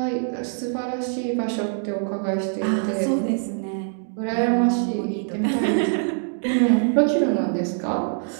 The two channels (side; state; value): left; silent; 63 dB below the other